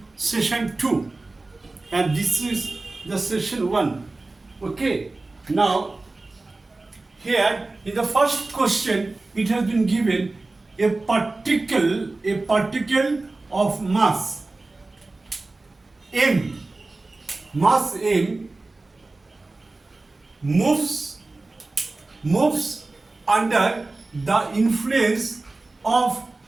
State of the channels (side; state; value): left; quieter; 3.2 dB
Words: session 2, and this is the session 1. Okay, now here in the first question it has been given a particle of mass m moves under the influence of